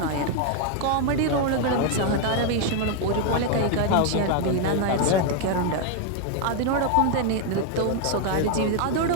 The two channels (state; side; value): different; both; correlation 0.00